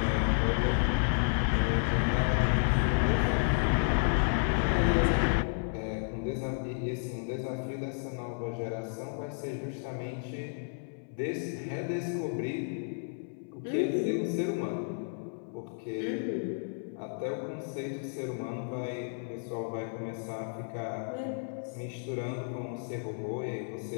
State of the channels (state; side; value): silent; right; 56 dB below the other